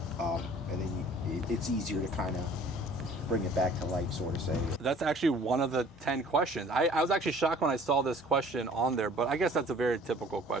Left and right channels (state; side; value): normal; both; correlation 0.51